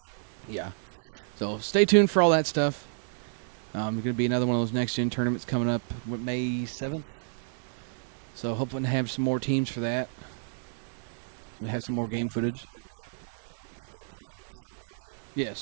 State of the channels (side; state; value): left; silent; digital silence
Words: Yeah. So stay tuned for all that stuff. Going to be another one of those next gen tournaments coming up May 7th. So hoping to have some more teams for that. We have some more game footage.